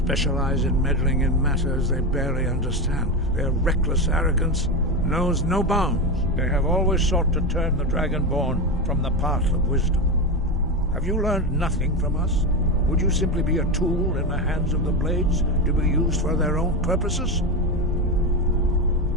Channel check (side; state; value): both; normal; correlation 0.16